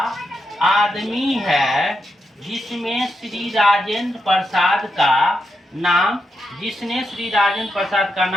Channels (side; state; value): both; normal; correlation 0.84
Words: आदमी है जिसमें श्री राजेंद्र प्रसाद का नाम, जिसने श्री राजेंद्र प्रसाद का